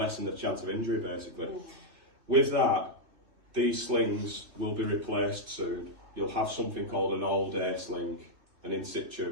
the chance of injury, basically. With that, these slings will be replaced soon. You'll have something called an all-day sling, an in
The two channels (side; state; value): left; late; 3.1 ms